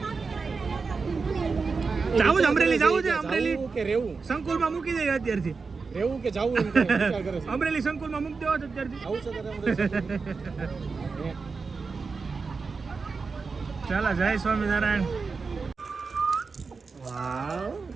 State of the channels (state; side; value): quieter; left; 4.7 dB